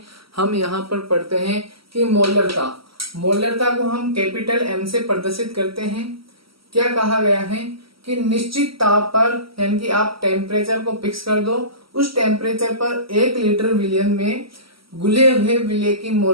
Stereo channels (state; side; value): late; left; 0.75 ms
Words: हम यहाँ पर पढ़ते हैं कि मोलरता को हम कैपिटल M से प्रदर्शित करते हैं। क्या कहा गया है कि निश्चित ताप पर, यानी कि आप टेम्परेचर को फिक्स कर दो, उस टेम्परेचर पर 1 लीटर विलयन में घुले हुए विलय की